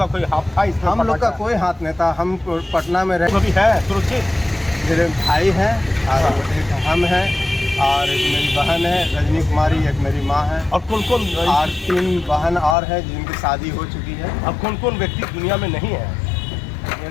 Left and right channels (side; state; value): right; drops out; at 12.8 s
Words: कोई हाथ था इसमें? हम लोग का कोई हाथ नहीं था। हम पटना में रहे। अभी है सुरक्षित? मेरे भाई हैं और एक हम हैं और एक मेरी बहन है रजनी कुमारी, एक मेरी माँ है। और कौन कौन? और 3 बहन और है जिनकी शादी हो चुकी है। अब कौन कौन व्यक्ति दुनिया में नहीं है?